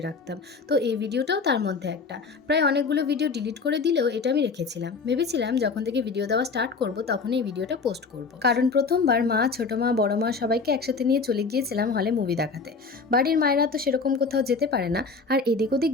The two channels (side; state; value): right; quieter; 4.5 dB